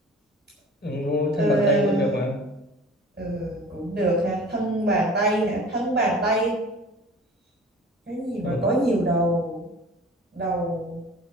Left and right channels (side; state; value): both; normal; correlation 0.42